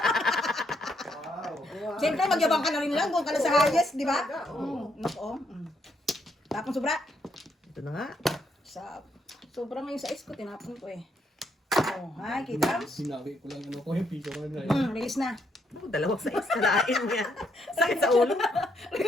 Siyempre, magyabang ka na rin lang. Kung ka na sa highest, di ba? Nako. Tapos sobra. Ito na nga. Sobra ngayon sa ice ko, tinapon ko eh. Oh, hi, kita? Sinabi ko lang ano ko yung piso ko na. Release na. Oh, 2 size. Kalain niya. Sakit sa ulo.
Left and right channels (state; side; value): normal; both; correlation 0.74